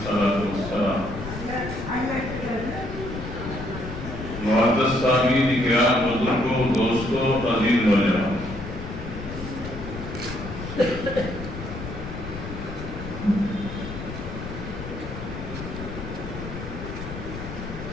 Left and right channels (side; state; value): left; noise; rumble, 9 dB below the sound